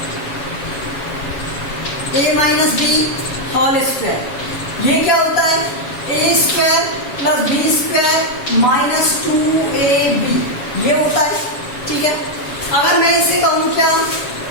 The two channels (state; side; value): late; right; 7.1 ms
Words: a minus b whole square. ये क्या होता है? a square plus b square minus 2ab ये होता है. ठीक है, अगर मैं इसे कहूं क्या?